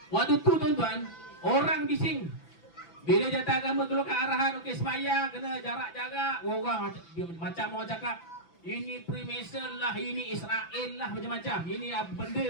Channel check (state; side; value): late; right; 6.0 ms